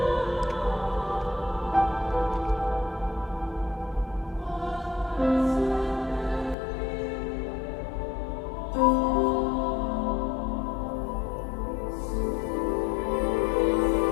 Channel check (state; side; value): drops out; right; at 6.6 s